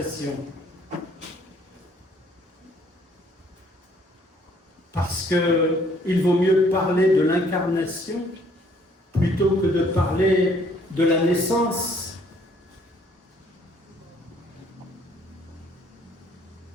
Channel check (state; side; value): normal; both; correlation 0.62